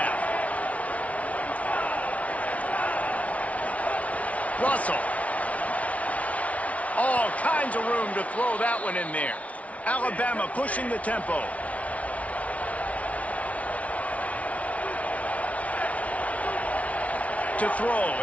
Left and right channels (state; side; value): late; right; 0.066 ms